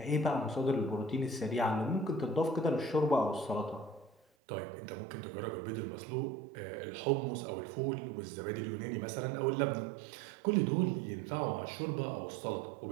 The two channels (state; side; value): drops out; left; at 4.2 s